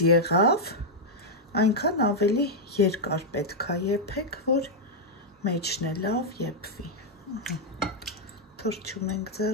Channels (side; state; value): both; normal; correlation -0.03